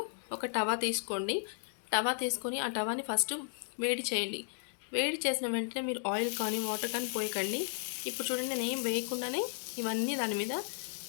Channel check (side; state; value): right; silent; 55 dB below the other